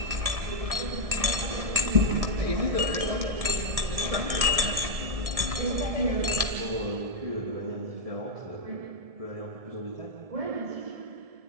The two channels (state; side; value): late; left; 1.7 ms